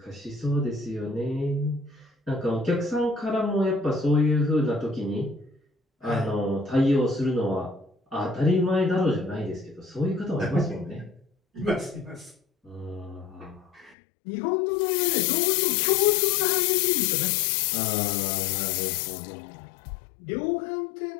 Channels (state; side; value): drops out; right; at 14.0 s